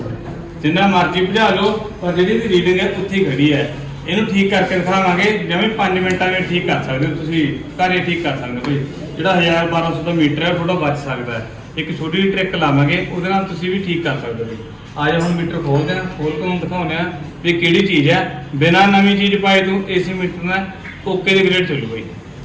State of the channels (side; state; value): both; identical; correlation 1.00